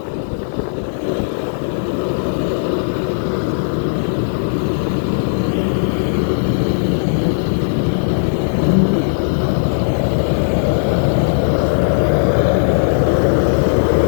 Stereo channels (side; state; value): right; silent; 68 dB below the other